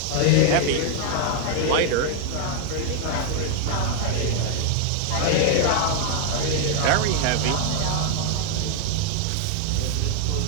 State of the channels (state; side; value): different; both; correlation 0.00